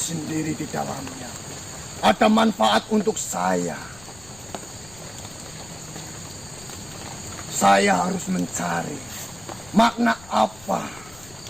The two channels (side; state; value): left; noise; rumble, 22 dB below the sound